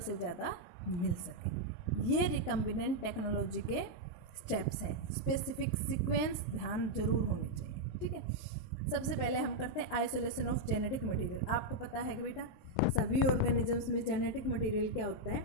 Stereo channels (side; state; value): right; late; 23 ms